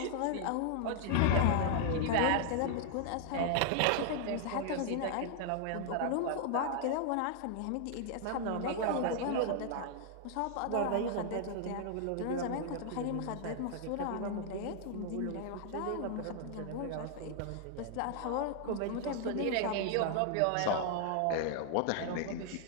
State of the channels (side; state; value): both; different; correlation 0.00